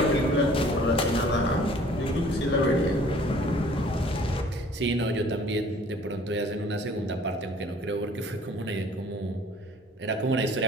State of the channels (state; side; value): normal; both; correlation 0.53